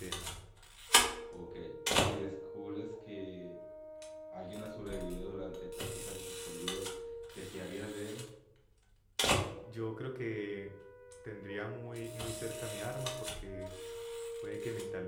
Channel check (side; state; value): both; identical; correlation 1.00